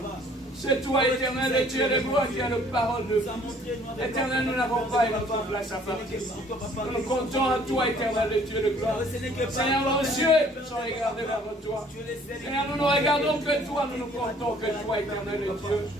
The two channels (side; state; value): both; normal; correlation 0.57